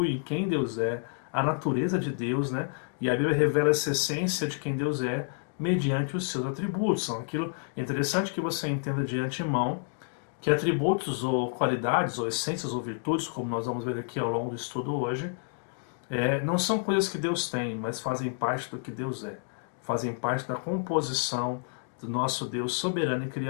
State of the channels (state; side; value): silent; right; 58 dB below the other